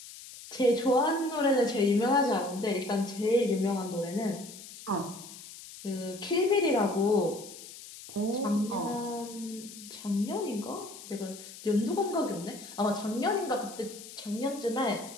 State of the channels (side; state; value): left; noise; hiss, 15 dB below the sound